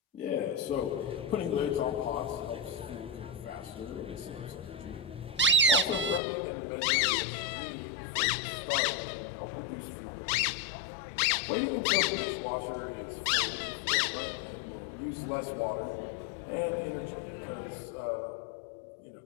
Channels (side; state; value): right; drops out; at 6.2 s